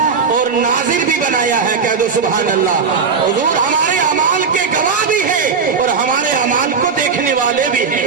اور ناظر بھی بنایا ہے، کہہ دو سبحان اللہ۔ حضور ہمارے اعمال کے گواہ بھی ہیں اور ہمارے اعمال کو دیکھنے والے بھی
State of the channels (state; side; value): quieter; left; 5.5 dB